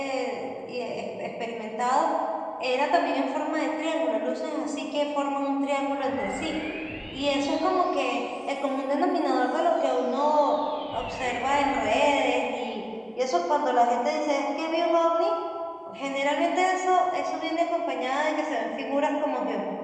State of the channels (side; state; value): both; identical; correlation 1.00